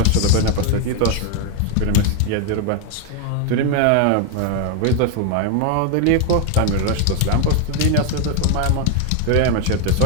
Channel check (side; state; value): both; different; correlation 0.01